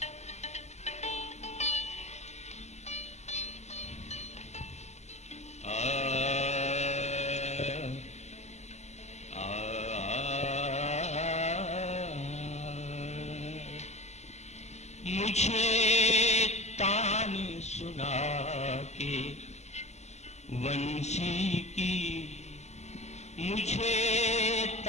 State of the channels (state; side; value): late; right; 0.33 ms